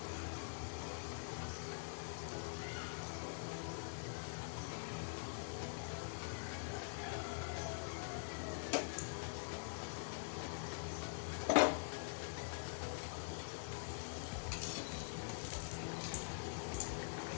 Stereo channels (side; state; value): right; silent; digital silence